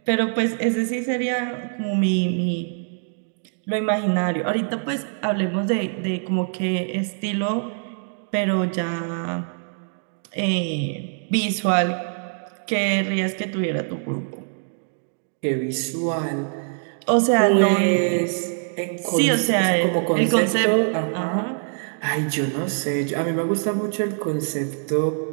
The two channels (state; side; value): silent; left; digital silence